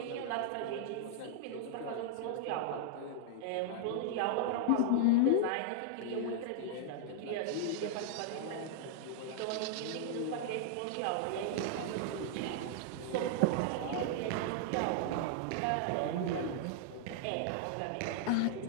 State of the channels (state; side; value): different; both; correlation -0.01